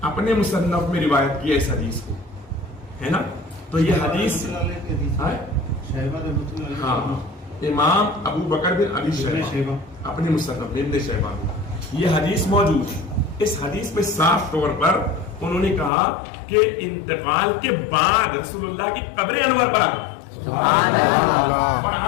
اپنے مصنف میں روایت کی اس حدیث کو, ہے نا. تو یہ حدیث ہاں امام ابو بکر بن ابی شیبہ اپنے مصنف ابن شیبہ میں یہ حدیث موجود ہے. اس حدیث میں صاف طور پر انہوں نے کہا کہ انتقال کے بعد رسول اللہ کی قبر انور پر آ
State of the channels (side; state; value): right; drops out; at 15.9 s